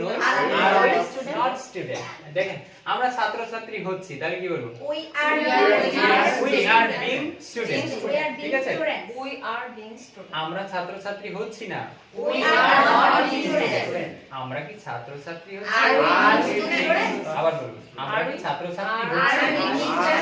নই? Are not student. দেখেন আমরা ছাত্র ছাত্রী হচ্ছি, তাহলে কি বলবো? উই আর বিং স্টুডেন্ট, ঠিক আছে? We are being student. আমরা ছাত্র ছাত্রী হচ্ছি না, উই আর নট স্টুডেন্ট। আমরা কি ছাত্র ছাত্রী হচ্ছি? আবার বলুন, আমরা কি ছাত্র ছাত্রী হচ্ছি?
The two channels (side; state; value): both; identical; correlation 1.00